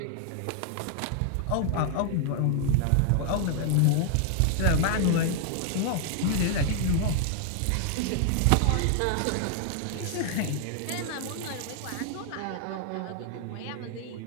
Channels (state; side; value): different; both; correlation 0.00